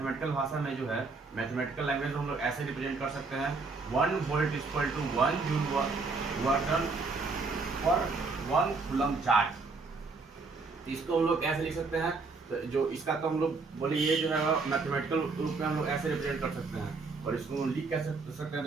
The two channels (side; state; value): left; quieter; 4.1 dB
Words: भाषा में जो है मैथमेटिकल लैंग्वेज में हम लोग ऐसे रिप्रेजेंट कर सकते हैं 1 volt equal to 1 joule work पर 1 कूलम चार्ज। इसको हम लोग कैसे लिख सकते हैं? तो जो इसका तो हम लोग बोले ये जो है मैथमेटिकल रूप में हम लोग ऐसे रिप्रेजेंट कर सकते हैं और इसको लिख कैसे सकते हैं?